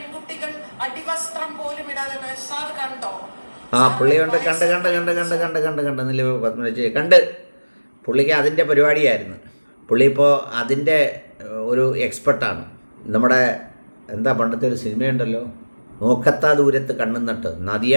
അടിവസ്ത്രം പോലും ഇടാതെ. സാർ കണ്ടോ? പുള്ളിയുണ്ട്, കണ്ട് പുള്ളിക്ക് അതിൻ്റെ പരിപാടിയായിരുന്നു. പുള്ളി ഇപ്പോൾ അതിൻ്റെ ഒരു എക്സ്പെർട്ടാണ്. നമ്മുടെ എന്താ പണ്ടത്തെ ഒരു സിനിമയുണ്ടല്ലോ, നോക്കത്താ ദൂരത്ത് കണ്ണും നട്ട്, നദിയ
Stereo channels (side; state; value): both; inverted; correlation -1.00